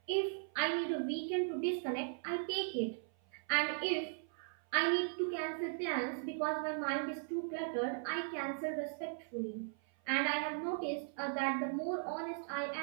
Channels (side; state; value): left; silent; 52 dB below the other